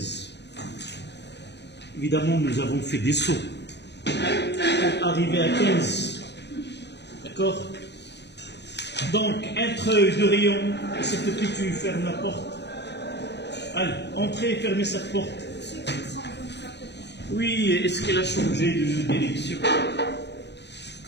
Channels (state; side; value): late; right; 0.50 ms